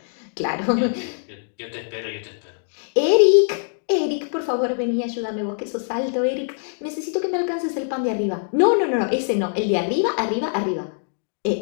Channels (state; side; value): silent; right; digital silence